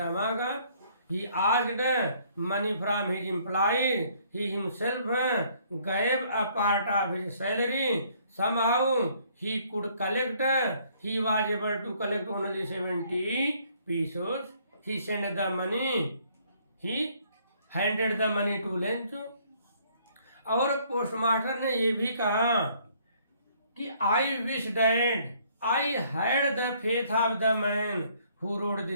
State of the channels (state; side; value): inverted; both; correlation -0.63